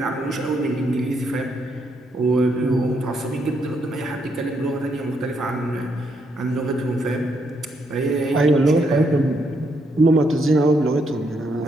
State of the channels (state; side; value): normal; both; correlation 0.76